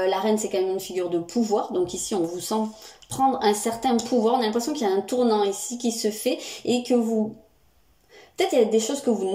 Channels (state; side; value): identical; both; correlation 1.00